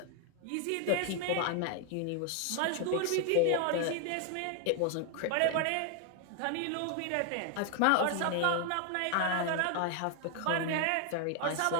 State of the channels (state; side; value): different; both; correlation 0.00